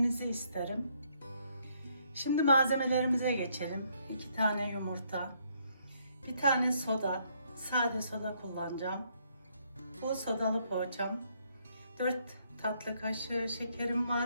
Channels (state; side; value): inverted; both; correlation -0.70